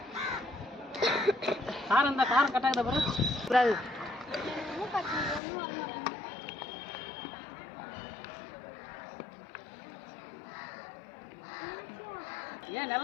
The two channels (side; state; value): right; drops out; at 5.4 s